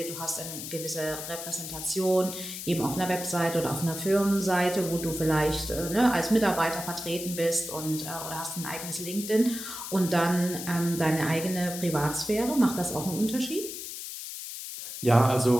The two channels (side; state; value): left; noise; hiss, 8 dB below the sound